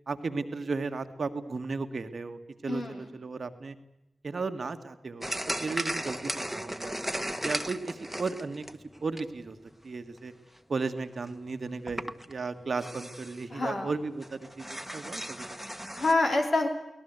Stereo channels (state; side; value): normal; both; correlation 0.91